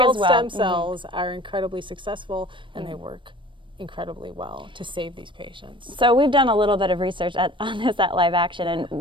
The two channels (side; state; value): left; late; 0.24 ms